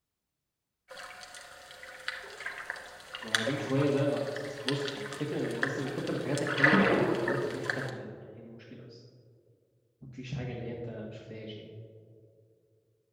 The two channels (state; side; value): identical; both; correlation 1.00